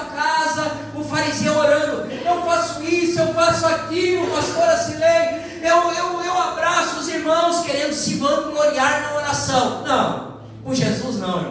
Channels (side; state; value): both; identical; correlation 1.00